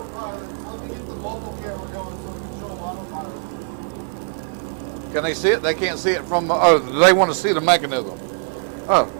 Let me hit the mobile camera going so we can show them autopilot. Can they see it? They can't see it from, oh, they want to see the mechanism. Oh.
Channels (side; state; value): left; silent; digital silence